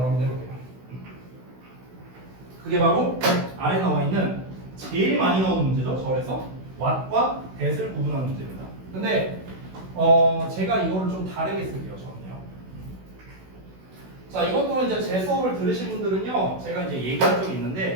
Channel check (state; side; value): late; left; 16 ms